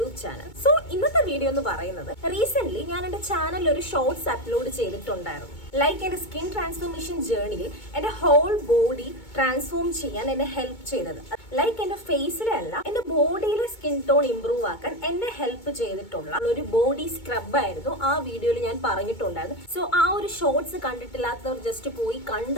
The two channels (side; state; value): right; late; 2.2 ms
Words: Channel. So ഇന്നത്തെ video എന്ന് പറയുന്നത് റീസെന്റ് ഞാൻ എന്റെ ചാനലിൽ ഒരു ഷോർട്സ് അപ്ലോഡ് ചെയ്തിട്ടുണ്ടായിരുന്നു. ലൈക്ക് എന്റെ സ്കിൻ ട്രാൻസ്ഫോർമേഷൻ ജേർണിയിൽ എന്റെ ഹോൾ ബോഡി ട്രാൻസ്ഫോം ചെയ്യാൻ എന്നെ ഹെൽപ്പ് ചെയ്തത്. ലൈക്ക് എന്റെ ഫേസിലെ അല്ല, എന്റെ ബോഡിയിലെ സ്കിൻ ടോൺ ഇംപ്രൂവ് ആക്കാൻ എന്നെ ഹെൽപ്പ് ചെയ്തിട്ടുള്ള ഒരു ബോഡി സ്ക്രബ് ആയിരുന്നു ആ വീഡിയോയിൽ ഞാൻ പറഞ്ഞിട്ടുണ്ടായിരുന്നു. സോ ആ ഒരു ഷോർട്സ് കണ്ടിട്ടില്ലാത്തവർ ജസ്റ്റ് പോയി